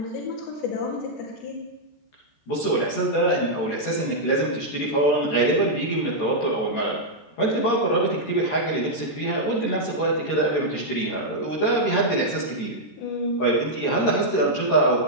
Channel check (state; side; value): late; right; 13 ms